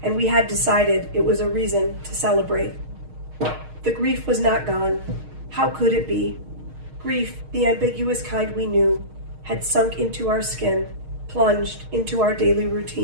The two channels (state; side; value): late; left; 6.4 ms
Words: and we had decided it was a reason to celebrate. The grief was not gone. How could it be? Grief, the ambiguous kind we knew, had sunk into our skin, plunged into our daily